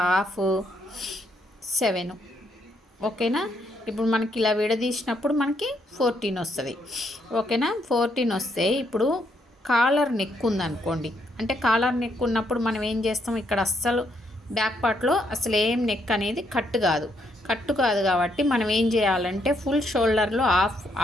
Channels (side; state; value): both; normal; correlation 0.74